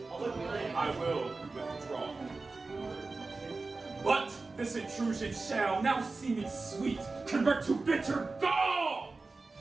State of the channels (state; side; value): quieter; left; 3.7 dB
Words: I will withdraw. But this intrusion shall now see me sweet, convert to bitter gall!